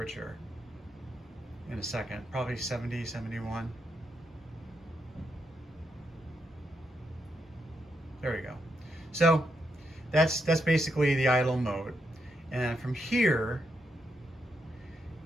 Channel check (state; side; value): normal; both; correlation 0.81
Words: in a second, probably 70, 71. There we go. So that's basically the idle mode. And from here,